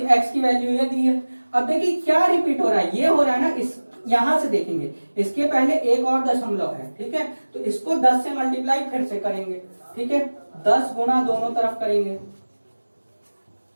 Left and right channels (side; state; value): both; inverted; correlation -1.00